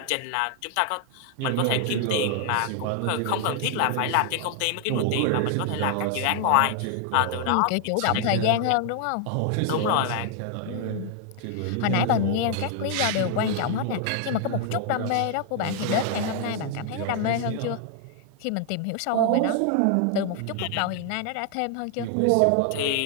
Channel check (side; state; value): both; different; correlation 0.00